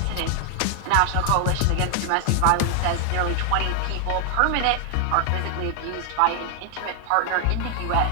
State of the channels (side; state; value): both; different; correlation 0.00